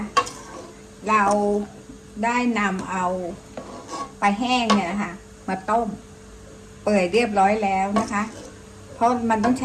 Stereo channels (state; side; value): identical; both; correlation 1.00